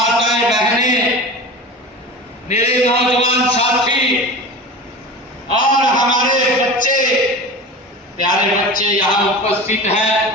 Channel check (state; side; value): normal; both; correlation 0.32